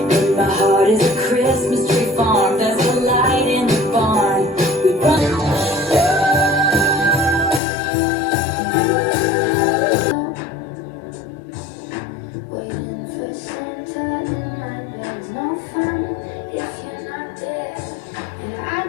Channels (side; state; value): right; drops out; at 7.6 s